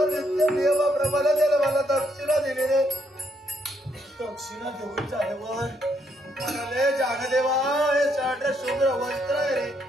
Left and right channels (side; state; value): both; normal; correlation 0.74